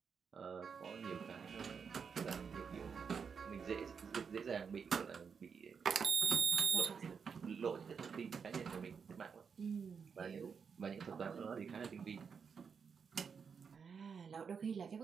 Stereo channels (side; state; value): left; quieter; 6.2 dB